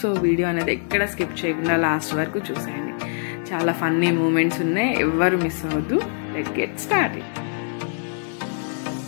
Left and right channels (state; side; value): silent; right; 63 dB below the other